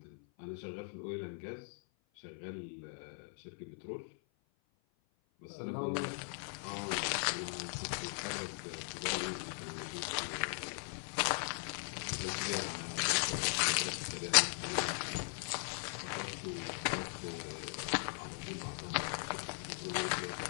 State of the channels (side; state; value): right; silent; 52 dB below the other